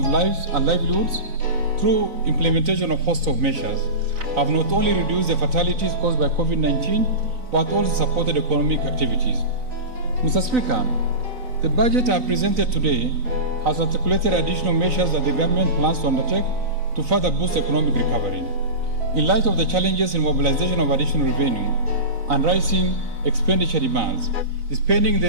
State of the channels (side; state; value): left; late; 3.9 ms